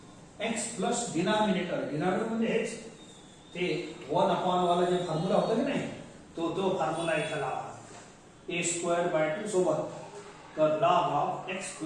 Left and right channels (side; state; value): both; identical; correlation 1.00